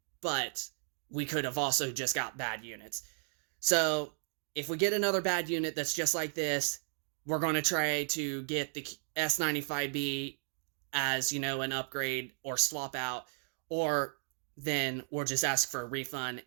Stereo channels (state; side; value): silent; left; 55 dB below the other